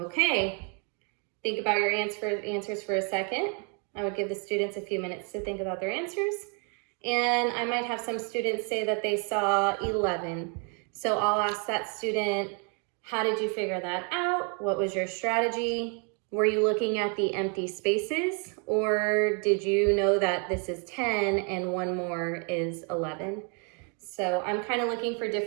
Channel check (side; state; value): left; quieter; 38.4 dB